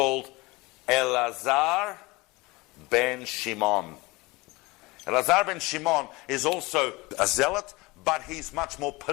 Elazar ben Shimon. Elazar ben Shimon is also a zealot, but he's much more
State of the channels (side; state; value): right; quieter; 23.2 dB